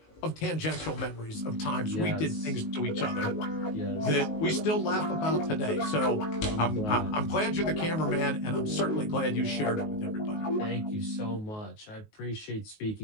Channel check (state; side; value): late; right; 19 ms